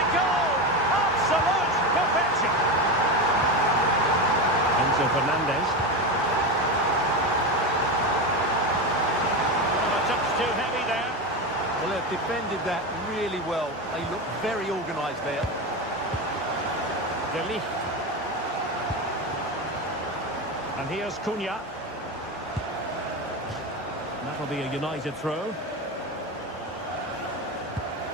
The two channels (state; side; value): normal; both; correlation 0.18